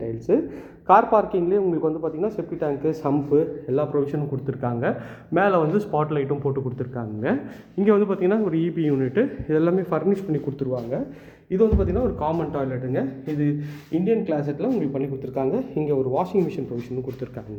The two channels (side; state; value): both; identical; correlation 1.00